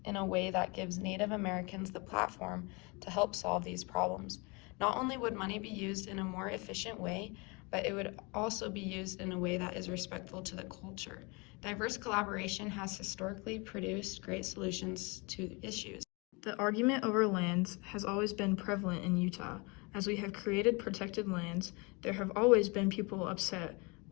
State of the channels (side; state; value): right; quieter; 28.9 dB